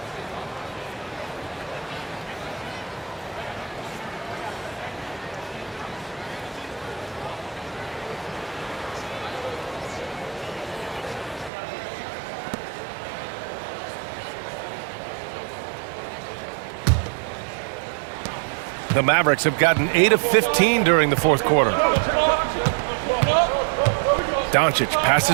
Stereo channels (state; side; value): drops out; left; at 11.5 s